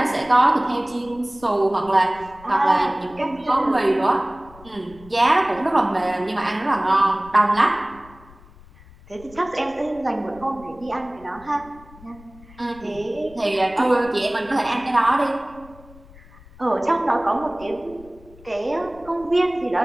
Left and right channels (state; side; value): noise; left; rumble, 23 dB below the sound